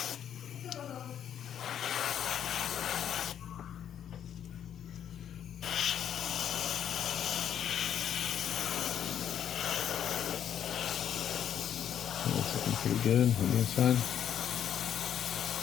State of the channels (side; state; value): right; quieter; 9.5 dB